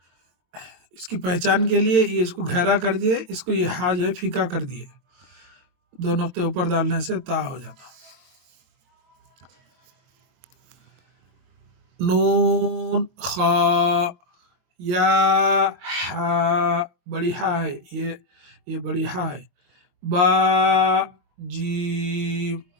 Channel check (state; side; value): late; left; 23 ms